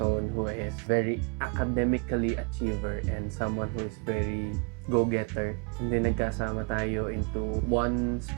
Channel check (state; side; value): quieter; left; 35.0 dB